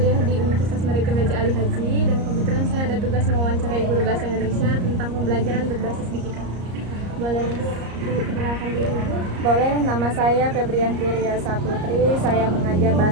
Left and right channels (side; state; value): left; late; 34 ms